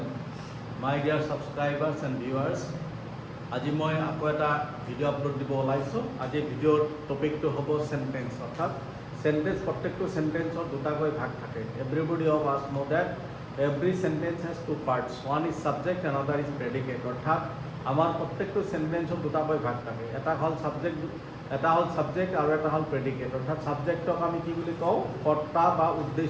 My dear subscribers and viewers, আজি মই আকৌ এটা video' upload দিব ওলাইছোঁ। আজি ভিডিঅ'ৰ টপিকটো হ'ব সেন্টেন্স, অৰ্থাৎ সেন্টেন্স। প্ৰত্যেকটো সেন্টেন্সৰ দুটাকৈ ভাগ থাকে। Everybody of us know that every sentence has two parts, one is subject and other is predicate. অৰ্থাৎ আমাৰ প্ৰত্যেকটো সেন্টেন্সৰ দুটাকৈ ভাগ থাকে। এটা হ'ল সাবজেক্ট আৰু এটা হ'ল প্ৰেডিকেট। অৰ্থাৎ সাবজেক্টক আমি কি বুলি কওঁ? কৰ্তা বা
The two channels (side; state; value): both; identical; correlation 1.00